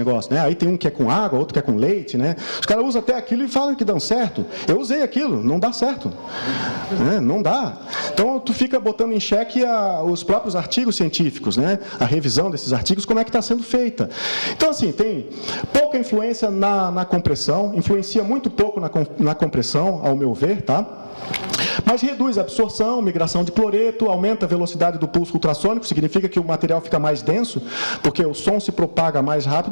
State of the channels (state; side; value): inverted; both; correlation -1.00